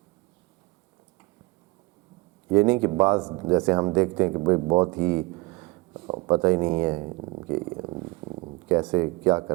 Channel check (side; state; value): left; quieter; 23.2 dB